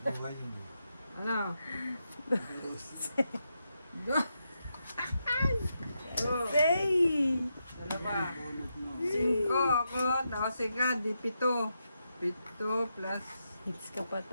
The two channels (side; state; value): both; inverted; correlation -0.84